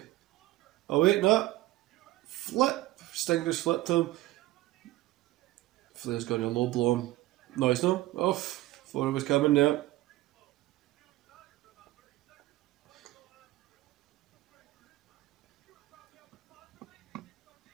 Oh wait, no. Flip. Sting just flipped him. Flair's going to low blow him. No, he's not. Off. Thought it was coming there.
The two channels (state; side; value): quieter; left; 17.2 dB